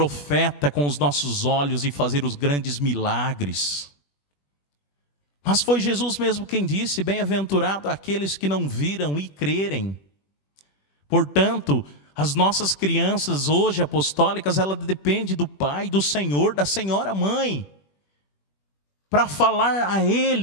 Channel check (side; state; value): right; late; 21 ms